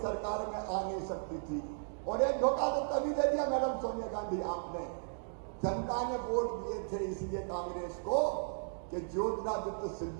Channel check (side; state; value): left; silent; digital silence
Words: सरकार में आ नहीं सकती थी। और एक धोखा तो तभी दे दिया मैडम सोनिया गांधी आपने। जनता ने वोट दिए थे इसलिए कांग्रेस को कि ज्योतिरादित्य